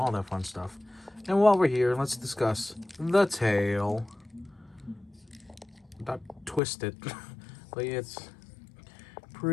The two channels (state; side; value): drops out; right; at 6.6 s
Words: that fun stuff. And while we're here, let's discuss the tail. Not twisted, but it's